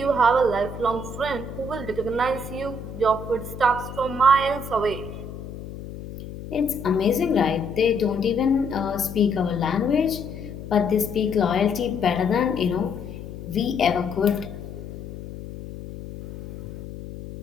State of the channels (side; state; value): left; noise; hum, 11 dB below the sound